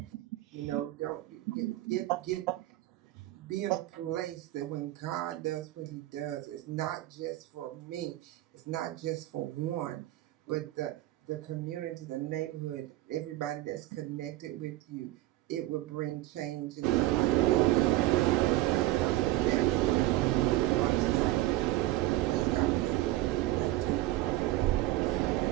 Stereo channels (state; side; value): quieter; left; 16.4 dB